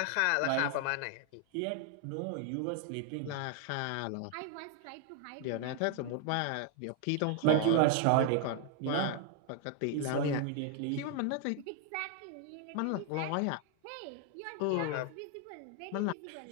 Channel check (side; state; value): both; different; correlation 0.00